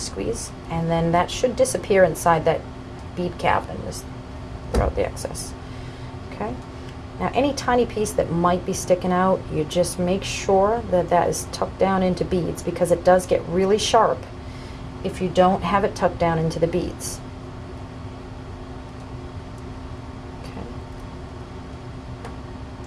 squeeze, and then that should disappear inside that bead cap and just throw out the excess. Okay, now any tiny piece that might be sticking out, you just make sure that that is tucked down into beads, because it does get really sharp if you don't have it tucked down into the beads. Okay,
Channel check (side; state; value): both; identical; correlation 1.00